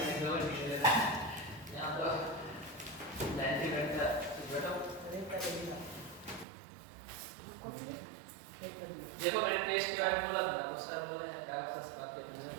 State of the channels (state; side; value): drops out; left; at 6.5 s